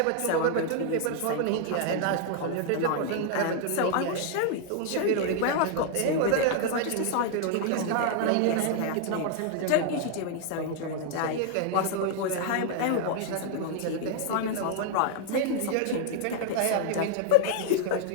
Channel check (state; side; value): different; both; correlation 0.00